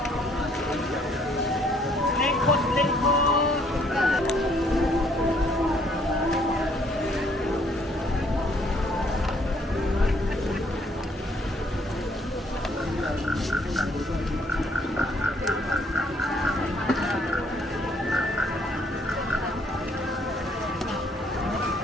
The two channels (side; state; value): both; normal; correlation 0.65